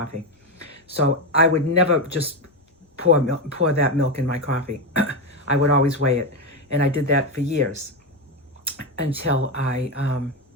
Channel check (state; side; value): normal; both; correlation 0.12